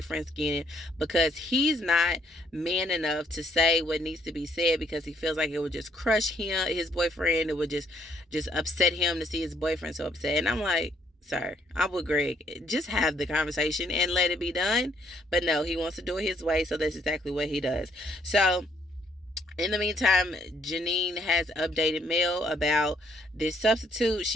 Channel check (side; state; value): both; normal; correlation 0.68